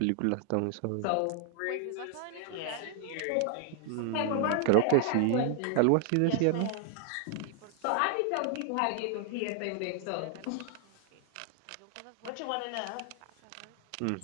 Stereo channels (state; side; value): different; both; correlation 0.00